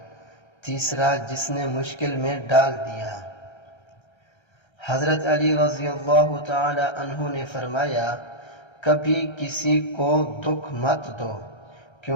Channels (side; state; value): right; late; 1.3 ms